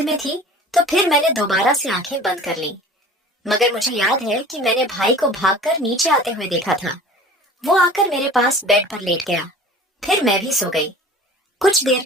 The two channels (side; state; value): both; normal; correlation 0.42